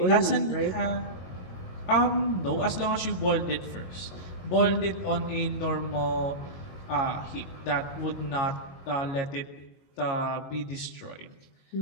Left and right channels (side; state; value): right; late; 22 ms